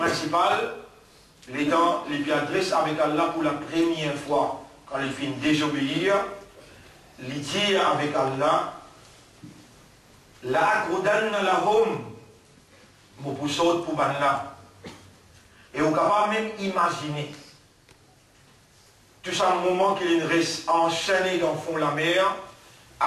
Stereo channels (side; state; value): both; identical; correlation 1.00